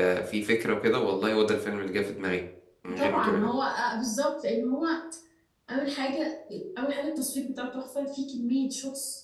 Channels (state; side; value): identical; both; correlation 1.00